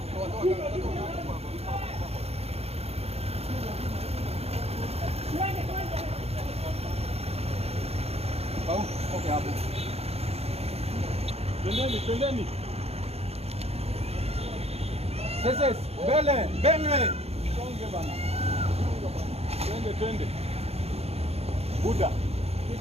Okay hapo. Twendeni. Sasa mbele. Songe bana. Twende. Buda.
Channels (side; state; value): left; late; 0.30 ms